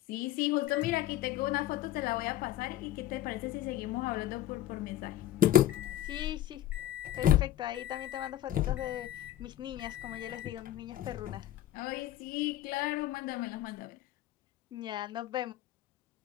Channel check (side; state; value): right; quieter; 13.1 dB